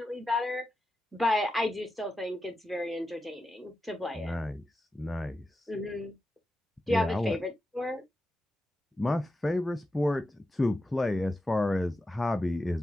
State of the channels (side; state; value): both; normal; correlation 0.91